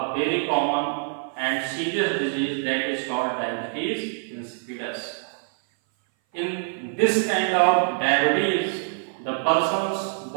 very common and serious disease that is called diabetes insipidus. In this kind of diabetes, the person's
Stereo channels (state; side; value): silent; left; 59 dB below the other